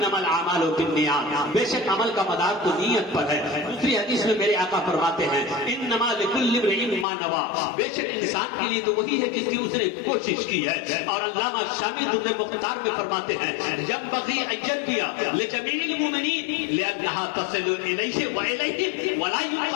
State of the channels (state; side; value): drops out; right; at 7.1 s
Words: الاعمال بالنیات, بے شک عمل کا مدار تو نیت پر ہے. دوسری حدیث میں میرے آقا فرماتے ہیں انما لکل امرئ ما نوى, بے شک انسان کے لیے تو وہی ہے جس کی اس نے کوشش کی ہے. اور علامہ شامی درر مختار میں فرماتے ہیں ينبغي ان ينبغي لجميع المؤمنين لانها تصل اليه واليه ولا